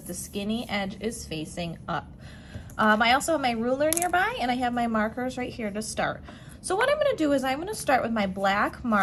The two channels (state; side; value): identical; both; correlation 1.00